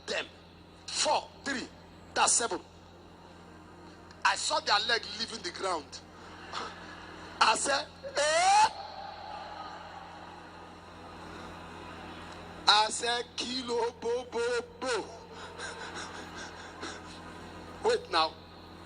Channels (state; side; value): identical; both; correlation 1.00